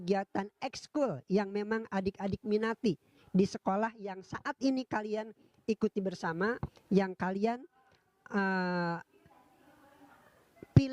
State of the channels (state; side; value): identical; both; correlation 1.00